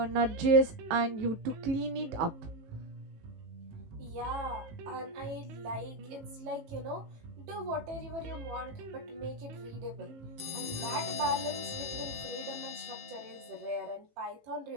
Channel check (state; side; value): late; left; 18 ms